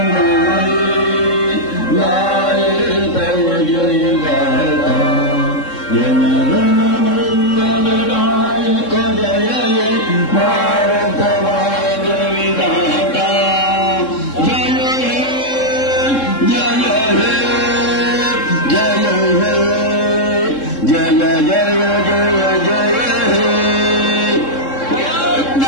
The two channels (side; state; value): right; late; 3.7 ms